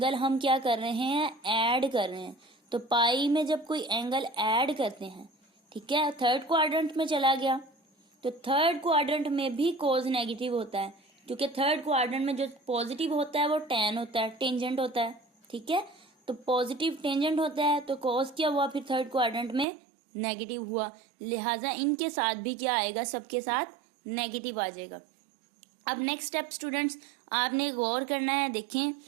हम क्या कर रहे हैं, ऐड कर रहे हैं। तो पाई में जब कोई एंगल ऐड करते हैं, ठीक है, थर्ड क्वाड्रेंट में चला गया, तो थर्ड क्वाड्रेंट में भी कोस नेगेटिव होता है, क्योंकि थर्ड क्वाड्रेंट में जो पॉजिटिव होता है वो टैन होता है, टेंजेंट होता है। ठीक है, तो पॉजिटिव टेंजेंट होता है तो कोस क्या हुआ, फिर थर्ड क्वाड्रेंट में नेगेटिव हुआ। लिहाजा इनके साथ भी क्या आएगा, सबके साथ नेगेटिव आ जाएगा। अब नेक्स्ट स्टेप स्टूडेंट्स, आपने गौर करना है, देखें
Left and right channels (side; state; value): left; drops out; at 19.7 s